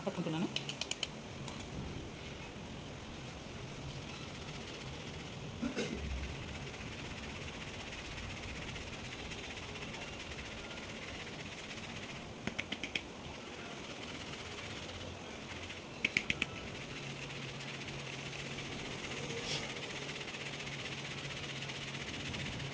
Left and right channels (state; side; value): identical; both; correlation 1.00